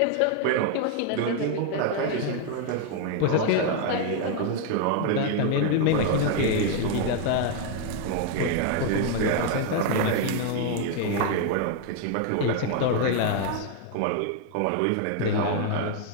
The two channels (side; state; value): both; different; correlation 0.00